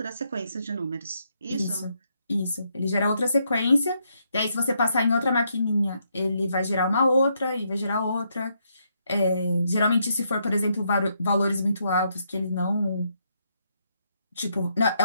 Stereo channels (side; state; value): both; inverted; correlation -0.76